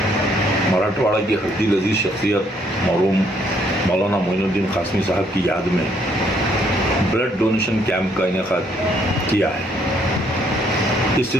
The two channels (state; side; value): normal; both; correlation 0.68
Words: मराठवाड़ा की हड्डी लजीज शख्सियत मरहूम मौलाना मोइनुद्दीन कासमी साहब की याद में ब्लड डोनेशन कैंप का इनेकाद किया है। इस